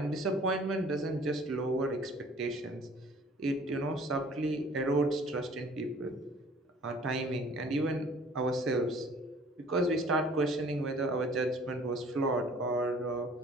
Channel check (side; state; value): both; normal; correlation 0.52